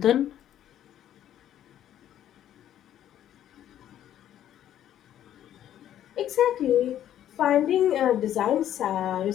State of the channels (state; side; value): quieter; right; 11.3 dB